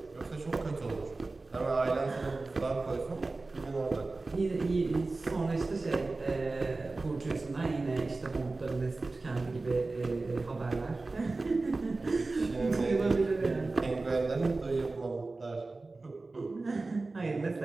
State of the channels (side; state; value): left; quieter; 3.5 dB